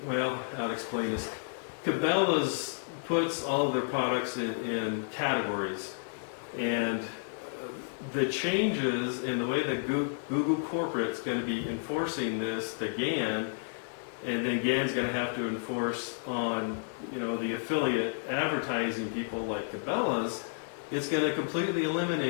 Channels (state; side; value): silent; right; digital silence